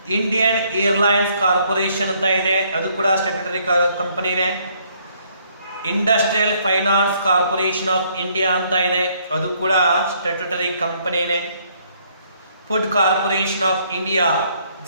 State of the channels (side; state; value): both; inverted; correlation -0.67